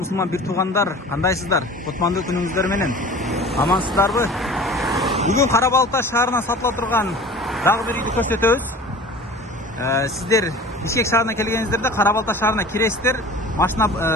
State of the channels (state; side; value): normal; both; correlation 0.41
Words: бир туугандар, кандайсыздар? Кутмандуу күнүңүздөр менен. Амансыздарбы? Бүгүн Карабалта шаарына сатыла турган дагы бир үйдү көрсөтөбүз. Сиздер Бишкек шаарына келгениңиздерде Карабалта шаарына киресиздер, машина